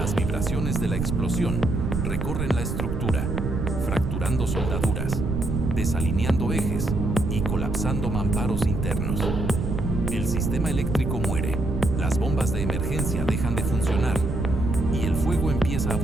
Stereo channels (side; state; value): right; noise; rumble, 1 dB below the sound